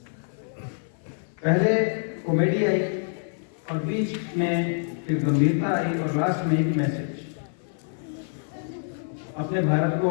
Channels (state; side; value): silent; right; 56 dB below the other